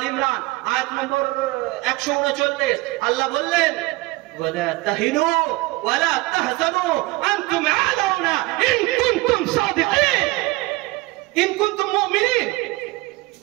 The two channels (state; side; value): quieter; left; 21.8 dB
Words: ইমরান আয়াত নম্বর 139, আল্লাহ বললেন, ওয়ালা তাহিনু ওয়ালা তাহজানু আনতুম আলাউনা ইন কুনতুম সাদিকিন ইন কুনতুম মুমিনিন।